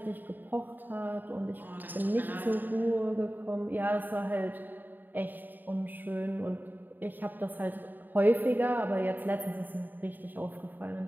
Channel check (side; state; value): left; late; 0.090 ms